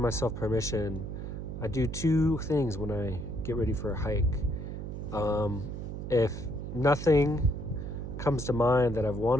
permission. I do two things when I get ready for a hike. If nothing comes to mind that I've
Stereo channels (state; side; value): noise; right; hum, 7 dB below the sound